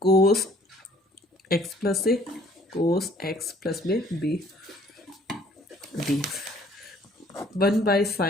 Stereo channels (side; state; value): both; normal; correlation 0.58